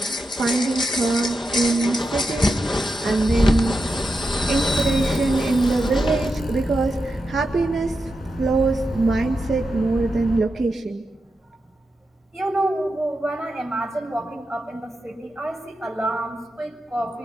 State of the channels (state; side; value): normal; both; correlation 0.88